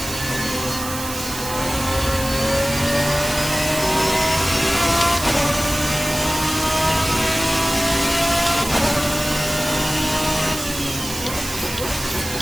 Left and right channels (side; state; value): right; noise; hiss, 8 dB below the sound